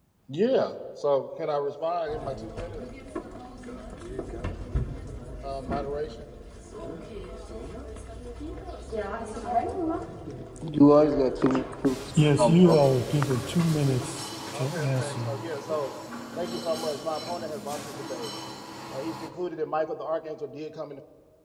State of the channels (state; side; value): identical; both; correlation 1.00